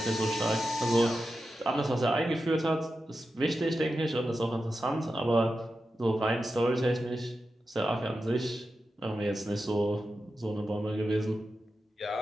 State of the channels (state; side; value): normal; both; correlation 0.91